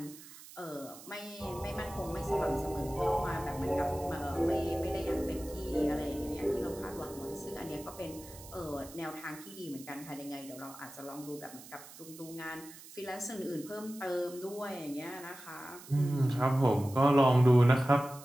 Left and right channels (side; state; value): right; noise; hiss, 17 dB below the sound